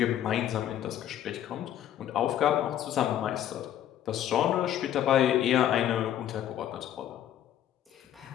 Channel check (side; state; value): right; quieter; 11.3 dB